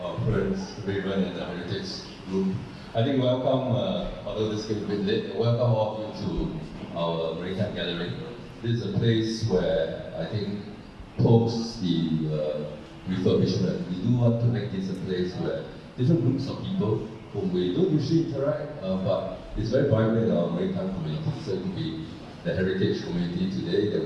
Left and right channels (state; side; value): identical; both; correlation 1.00